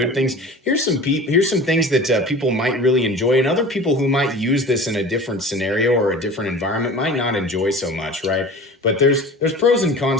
things, here's some things that people might really enjoy, and other people who might use this in a different scenario or a different environment might not enjoy so much, right? But there's pros and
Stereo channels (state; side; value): normal; both; correlation 0.39